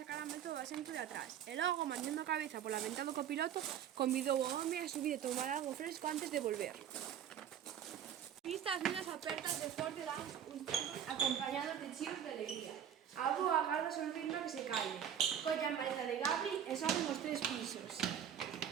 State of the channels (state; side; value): quieter; left; 9.3 dB